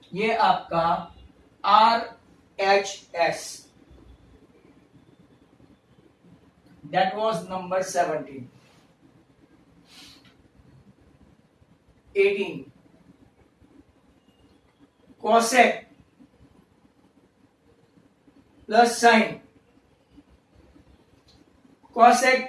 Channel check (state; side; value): identical; both; correlation 1.00